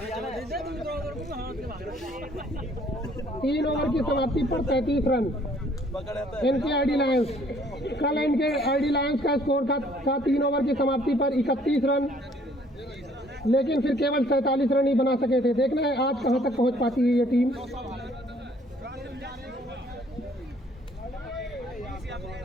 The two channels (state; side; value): normal; both; correlation 0.61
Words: 3 ओवर की समाप्ति पर 33 रन। इनके आईडी लायंस, कल इनके आईडी लायंस का स्कोर था 3 ओवर की समाप्ति पर 31 रन, लेकिन फिर केवल 47 रन ही बना सके थे। देखना है आज कहां तक पहुंच पाती है ये टीम।